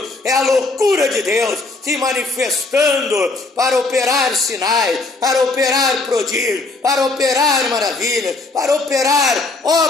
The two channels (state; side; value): quieter; right; 3.4 dB